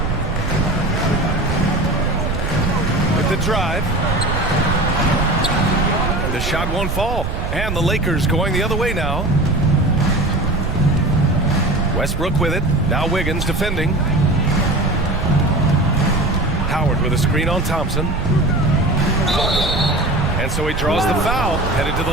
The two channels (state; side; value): noise; right; rumble, 3 dB below the sound